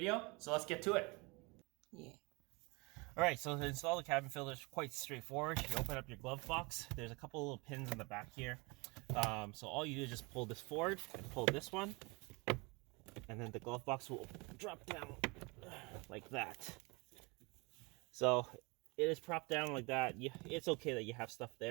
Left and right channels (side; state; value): left; quieter; 27.6 dB